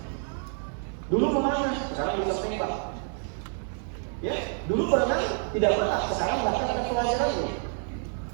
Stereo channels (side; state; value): left; silent; 56 dB below the other